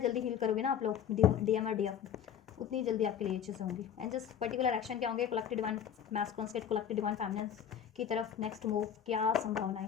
हील करोगे ना आप लोग, डीएम और डीएफ, उतनी जल्दी आपके लिए अच्छे से होंगी। एंड जस्ट पर्टिकुलर एक्शन क्या होंगे, कलेक्टिव डिवाइन मैस्कुलिन्स के कलेक्टिव डिवाइन फेमिनिन्स की तरफ नेक्स्ट मूव क्या संभावनाएं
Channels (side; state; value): right; quieter; 8.8 dB